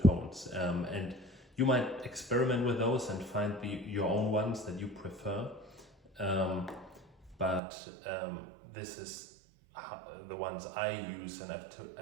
tones. And you might experiment with those and find your own ones that you prefer. But this is the ones I use, and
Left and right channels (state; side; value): drops out; left; at 7.6 s